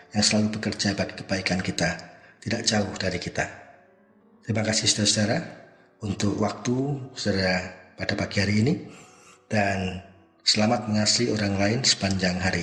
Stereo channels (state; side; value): identical; both; correlation 1.00